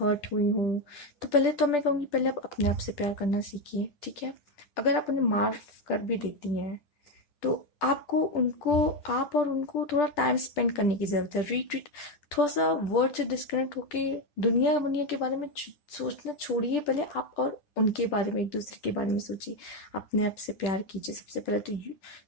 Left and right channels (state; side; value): late; right; 10 ms